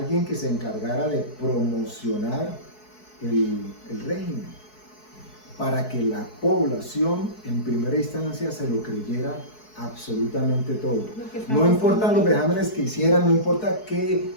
que se encargara de promocionar el régimen para que la población en primera instancia se lo creyera absolutamente todo. No importan los vejámenes que hicieran, no importa qué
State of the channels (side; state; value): right; late; 4.7 ms